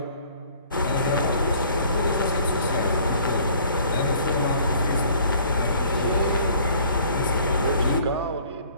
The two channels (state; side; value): inverted; both; correlation -0.55